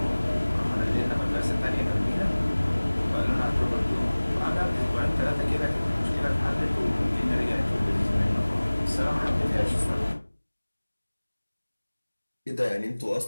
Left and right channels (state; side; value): inverted; both; correlation -1.00